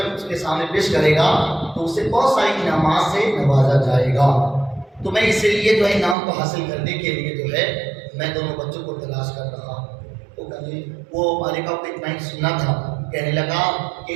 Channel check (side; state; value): left; drops out; at 6.2 s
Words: اس کے سامنے پیش کرے گا تو اسے بہت ساری انعامات سے نوازا جائے گا، تو میں اسی لیے جو ہے انعام کو حاصل کرنے کے لیے جو ہے میں دونوں بچوں کو تلاش کر رہا ہوں۔ وہ مالکہ کو اتنا ہی سننا تھا، کہنے لگا